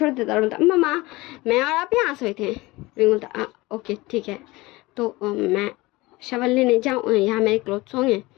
देता और बोलता मम्मा मैं और आप यहाँ सोए थे। विंग बोलता ओके ठीक है, तो मैं शवल लेने जाऊँ, यहाँ मेरे क्लोथ्स होंगे।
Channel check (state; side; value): quieter; right; 21.2 dB